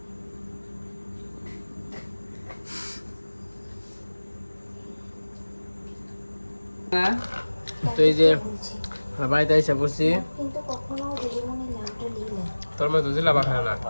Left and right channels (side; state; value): both; inverted; correlation -1.00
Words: তো এই যে বাড়িতে এসে বসছি তোর মতো জিলাপা খায় না